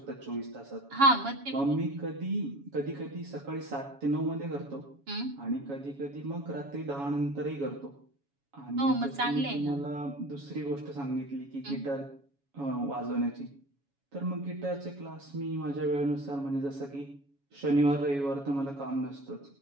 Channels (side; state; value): left; late; 7.2 ms